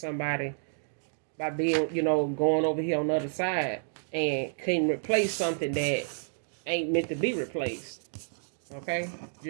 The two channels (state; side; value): silent; left; digital silence